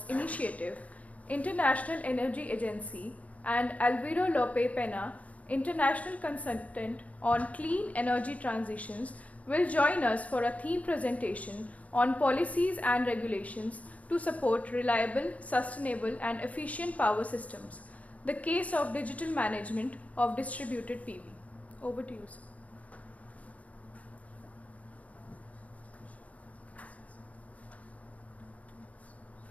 Initiative, International Energy Agency, and Alvaro Lope Pena, International Consultant on Clean Energy Transitions, will join us for a theme presentation on policies and regulations to support reliable, sustainable and efficient power systems, the case of digital management of distributed PV. Over to you, sir.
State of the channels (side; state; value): right; late; 0.068 ms